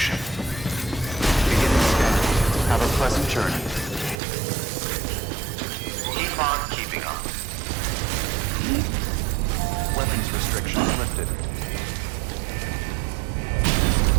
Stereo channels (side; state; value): left; drops out; at 4.2 s